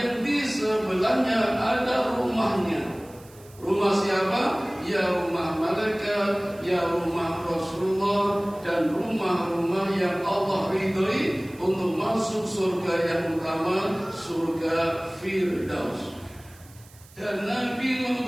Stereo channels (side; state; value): right; noise; hiss, 25 dB below the sound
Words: di sebelahnya ada rumahnya. Rumah siapa? Ya rumah malaikat, ya rumah Rasulullah, dan rumah-rumah yang Allah ridhoi untuk masuk surga yang utama, surga Firdaus. Dan Nabi